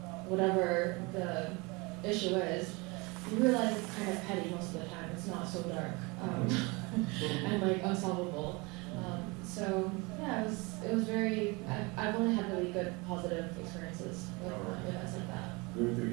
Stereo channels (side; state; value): left; quieter; 26.8 dB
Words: whatever the issue is, you realize it's kind of petty most of the time. It's not so dark and like unsolvable. So yeah, it was very. I've only had really good positive experiences with events like that. Good to